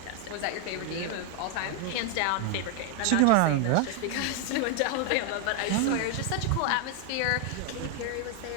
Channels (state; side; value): different; both; correlation 0.00